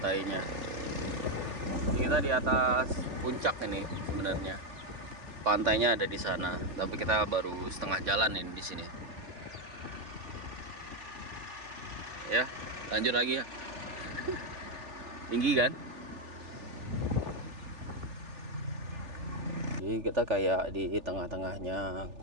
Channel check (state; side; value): late; left; 3.4 ms